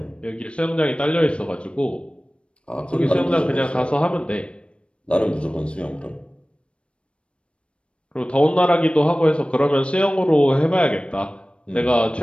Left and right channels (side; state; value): right; late; 0.058 ms